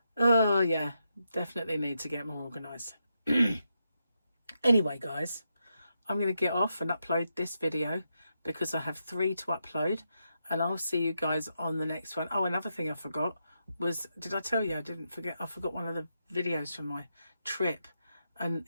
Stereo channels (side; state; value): both; inverted; correlation -0.84